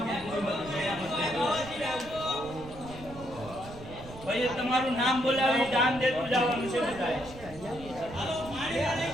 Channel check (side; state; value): right; noise; rumble, 15 dB below the sound